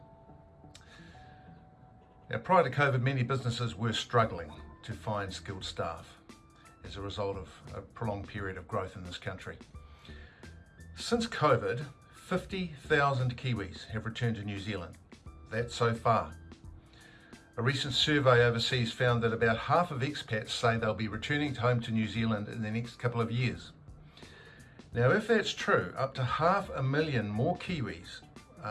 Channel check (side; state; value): both; identical; correlation 1.00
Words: Now, prior to COVID, many businesses were struggling to find skilled staff as a result of a prolonged period of growth in this country. Since COVID, 50,000 Kiwis have returned to New Zealand. That's so far. A recent survey overseas found that about half of expats say they'll be returning home to New Zealand in the next couple of years. Now, if that's true, up to 500,000 more Kiwis